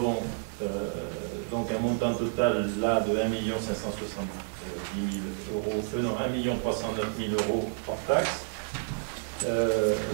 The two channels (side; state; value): left; silent; digital silence